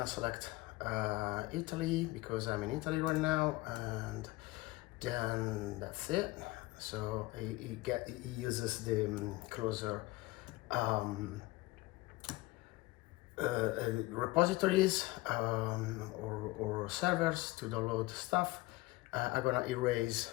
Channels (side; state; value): right; quieter; 20.4 dB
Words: select Italy because I'm in Italy right now, and then that's it. So it uses the closer um, repositories or servers to download stuff. I'm gonna erase